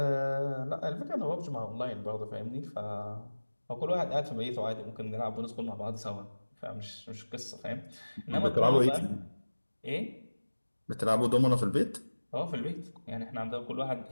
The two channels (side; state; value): both; inverted; correlation -1.00